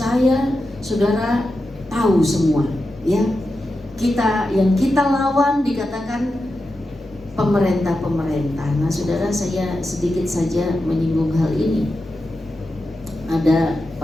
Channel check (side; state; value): both; normal; correlation 0.90